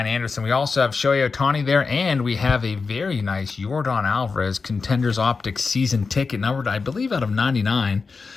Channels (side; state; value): right; quieter; 4.6 dB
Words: Anderson. We also have Shohei Ohtani there, and we have a very nice Yordan Alvarez Contenders Optics season ticket, numbered, I believe, out of 99.